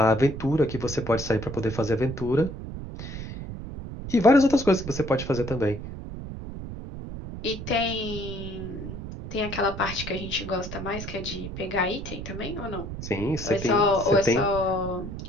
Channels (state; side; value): noise; right; rumble, 9 dB below the sound